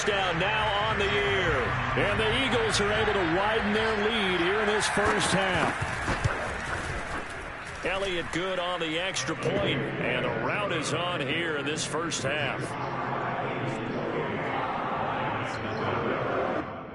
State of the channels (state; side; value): identical; both; correlation 1.00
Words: now on the year. And the Eagles are able to widen their lead here in this first half. Elliott good on the extra point, and the rout is on here in this first half.